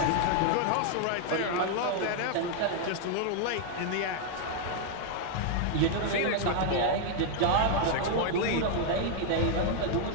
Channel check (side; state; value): both; different; correlation 0.00